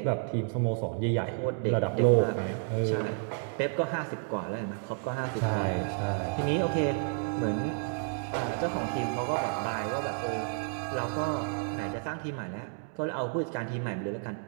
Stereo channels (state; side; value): silent; left; 57 dB below the other